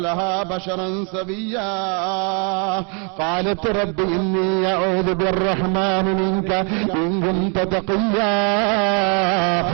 لها بشرا سويا قالت رب إني أعوذ بالرحمن منك إن كنت تقيا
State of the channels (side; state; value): left; quieter; 37.0 dB